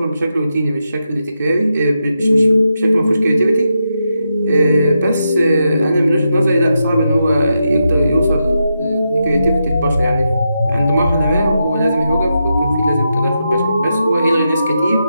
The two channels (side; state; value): both; inverted; correlation -0.85